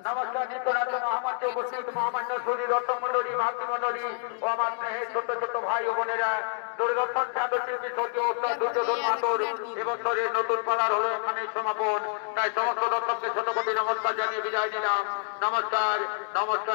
নমস্কার নিত্যনাথ মহামান্য উপস্থিত মহামান্য শরীর রত্নমন্ডলী মাতৃমন্ডলী ও আমার স্নেহের ছোট ছোট ভাই ও বোনেরা দূরদর্শন খ্যাত শিল্পী স্বর্গীয় ওস্তাদ দুর্যোধন মাহাতোর এবছরের নতুন পালার হলো এখানে সমাপন। তাই সমস্ত দর্শককে ছোট কোটি নমস্কার জানিয়ে বিদায় নিলাম। নমস্কার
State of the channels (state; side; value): silent; right; 59 dB below the other